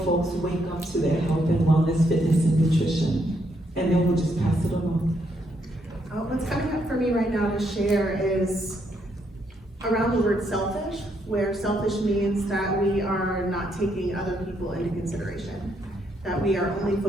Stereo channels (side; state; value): both; normal; correlation 0.75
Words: folks wake up to their health and wellness, fitness, and nutrition? And then we'll just pass it along. What's coming up for me right now to share is around the word selfish, where selfish means that we are not taking other people into consideration, that we are only